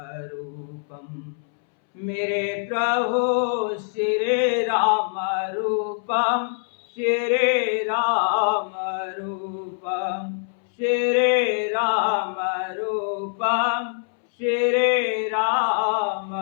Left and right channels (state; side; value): silent; right; 63 dB below the other